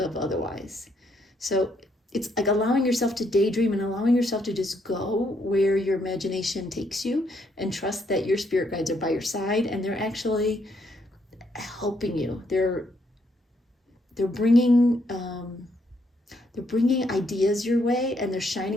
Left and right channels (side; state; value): both; normal; correlation 0.73